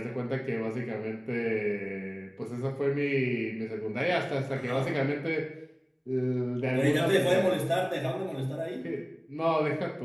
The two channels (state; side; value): identical; both; correlation 1.00